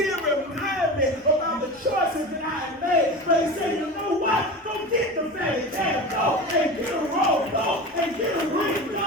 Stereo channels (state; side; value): normal; both; correlation 0.29